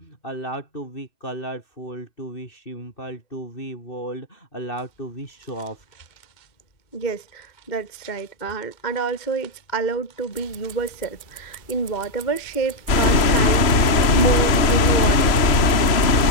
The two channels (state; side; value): late; right; 3.0 ms